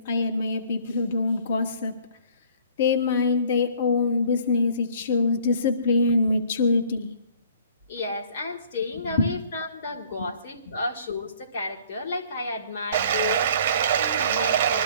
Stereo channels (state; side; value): inverted; both; correlation -0.55